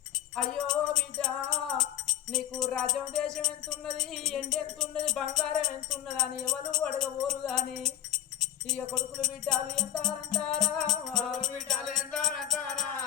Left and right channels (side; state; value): right; quieter; 12.0 dB